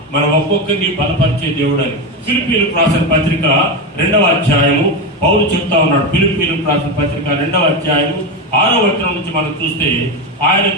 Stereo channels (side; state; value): both; normal; correlation 0.15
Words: మన ఒక్కొక్కరిని బలపరిచే దేవుడు అని ఫిలిప్పీయులకు రాసిన పత్రిక 2వ అధ్యాయము పౌలు చెప్తా ఉన్నాడు. ఫిలిప్పీయులకు రాసిన పత్రిక 2వ అధ్యాయము 6వ వచనం నుంచి మనం చూస్తే, ఆయన